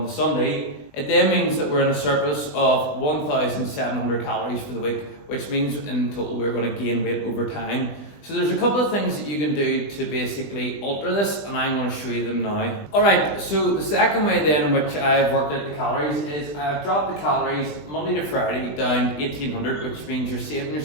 the Sunday, it then means that we're in a surplus of 1,700 calories for the week, which means in total we're going to gain weight over time. So there's a couple of things that you can do to basically alter this, and I'm going to show you them now. Alright, so the second way then in which I've worked out the calories is, I've dropped the calories Monday to Friday down 1,800, which means you're saving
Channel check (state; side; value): late; right; 20 ms